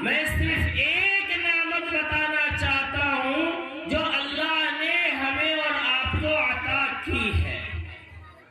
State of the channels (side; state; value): both; identical; correlation 1.00